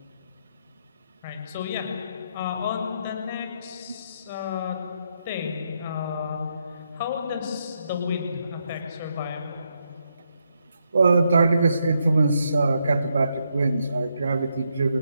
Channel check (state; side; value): inverted; both; correlation -0.79